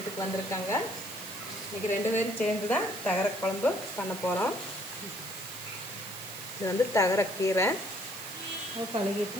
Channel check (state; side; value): noise; right; hiss, 12 dB below the sound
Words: வந்திருக்காங்க. இன்னைக்கு 2 பேரும் சேர்ந்து தான் தகரை குழம்பு பண்ண போகிறோம். இது தகரை கீரை கழுகிட்டு